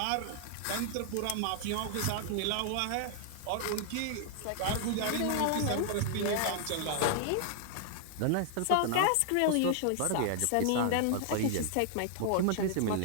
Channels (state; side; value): different; both; correlation 0.00